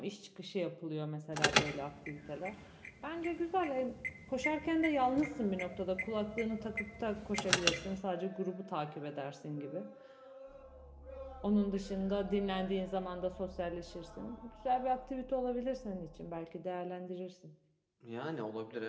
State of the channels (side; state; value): both; identical; correlation 1.00